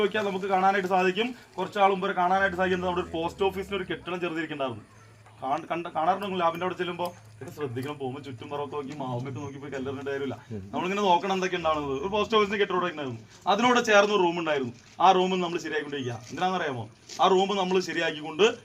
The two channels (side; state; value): both; identical; correlation 1.00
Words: നോക്കിയാൽ നമുക്ക് കാണാനായിട്ട് സാധിക്കും, കുറച്ചാൾ മുമ്പ് കാണാനായിട്ട് സാധിക്കുന്നത് നമ്മുടെ ഒരു പോസ്റ്റ് ഓഫീസിന് ഒരു കെട്ടിടം ചെറുതിരിക്കുന്നുണ്ടായിരുന്നു. കാണാറുണ്ടെങ്കിൽ ലാബിന്റെ അവിടെ ചെല്ലുമ്പോൾ ഇത് ശ്രദ്ധിക്കണം, പോകുമ്പോൾ ചുറ്റും പുറമൊക്കെ നോക്കി മാവുമൊക്കെ നോക്കി പോയി കല്ലറിന്റെ കാര്യമില്ല. നമ്മളിങ്ങനെ നോക്കണം എന്തൊക്കെ ഉണ്ടാവുന്നത്. ഒരു പോസ്റ്റ് ഓഫീസിന് കെട്ടിടം ഉണ്ടായിരുന്നു, അതിനോട് ചേർന്ന് റൂം ഉണ്ടായിരുന്നു. ആ റൂം നമ്മൾ ശരിയാക്കിക്കൊണ്ടിരിക്കുക. എന്തിനാണെന്നറിയാമോ? ആ റൂം നമ്മൾ ശരിയാക്കിക്കൊണ്ട്